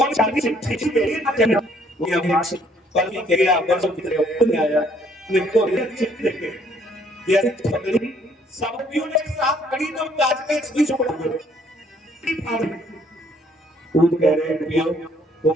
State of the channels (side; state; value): both; normal; correlation 0.64